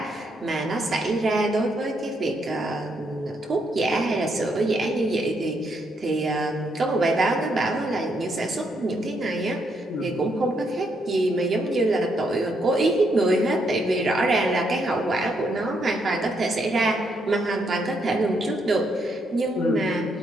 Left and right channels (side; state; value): both; normal; correlation 0.76